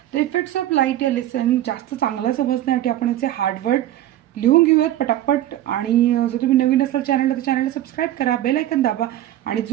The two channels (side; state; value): left; quieter; 13.3 dB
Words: तर इफेक्ट्स ऑफ लाईट या लेसन जास्त चांगला समजण्यासाठी आपण याचे हार्डवर्ड लिहून घेऊयात पटापट। आणि जर तुम्ही नवीन असाल चॅनलला तर चॅनलला सबस्क्राईब करा, बेल आयकन दाबा आणि